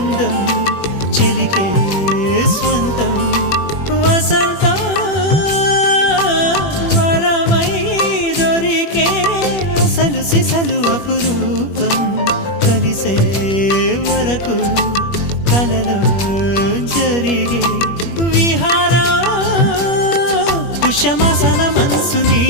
చెలికే స్వంతం వసంతం వరమై దొరికే అసలు సిసలు అపురూపం కలిసే వరకు కలలో జరిగే విహారం పుష్యమాసన మనసు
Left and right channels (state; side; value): late; right; 21 ms